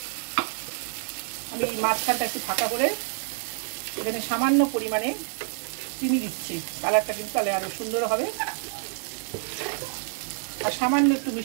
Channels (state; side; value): silent; left; digital silence